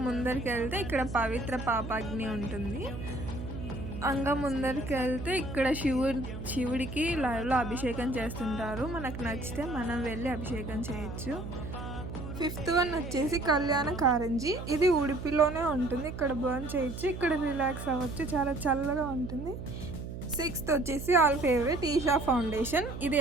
ముందరికి వెళ్తే ఇక్కడ పవిత్ర పాపాగ్ని ఉంటుంది. ముందరికి వెళ్తే ఇక్కడ శివుడికి లైవ్లో అభిషేకం చేస్తుంటారు. మనకు నచ్చితే మనం వెళ్ళి అభిషేకం చేయొచ్చు. ఫిఫ్త్ వన్ వచ్చేసి కళ్యాణ కారంజీ. ఇది ఉడిపిలోనే ఉంటుంది. ఇక్కడ బర్న్ చేయొచ్చు, ఇక్కడ రిలాక్స్ అవ్వచ్చు, చాలా చల్లగా ఉంటుంది. సిక్స్త్ వచ్చేసి ఆల్ ఫేవరెట్ ఈషా ఫౌండేషన్. ఇది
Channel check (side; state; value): right; noise; hum, 8 dB below the sound